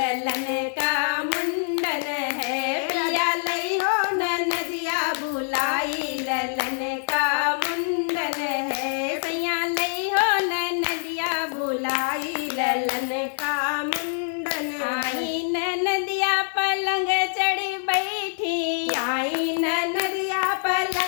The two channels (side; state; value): right; silent; digital silence